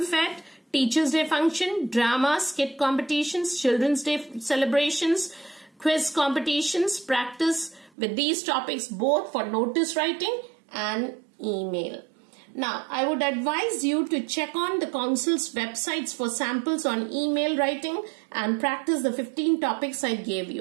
Teachers' Day function, drama, skit competitions, Children's Day celebrations, quiz competitions. Practice with these topics both for notice writing and email. Now, I would advise you to check on the Council's websites for samples on email writing and practice the 15 topics I gave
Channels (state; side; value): drops out; left; at 7.9 s